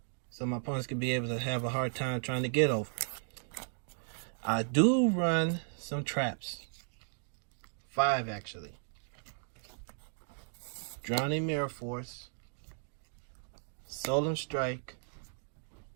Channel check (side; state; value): left; silent; 54 dB below the other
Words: opponents can be able to have a hard time trying to get over. I do run some traps. 5 actually. Drowning Mirror Force, Solemn Strike,